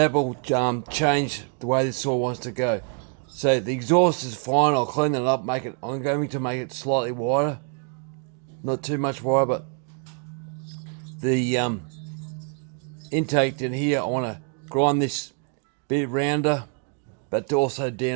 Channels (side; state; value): left; quieter; 39.8 dB